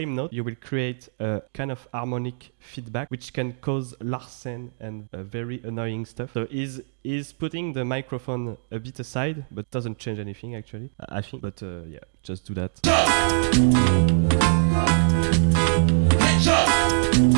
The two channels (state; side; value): silent; left; digital silence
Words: note, you will create a kind of harmonic feedback which can cause larsen and very annoying stuff. So he's putting the microphone a bit aside, but doesn't change anything actually, I think. But yeah, just do that.